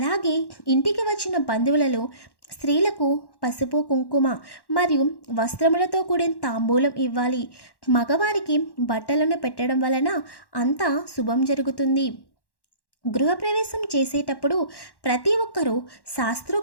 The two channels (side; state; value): right; late; 1.1 ms